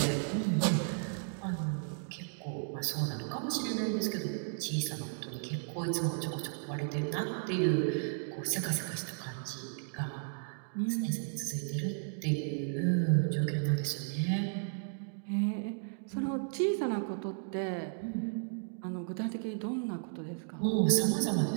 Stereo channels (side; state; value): left; silent; digital silence